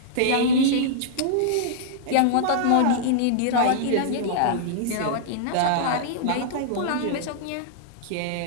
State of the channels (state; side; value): different; both; correlation -0.02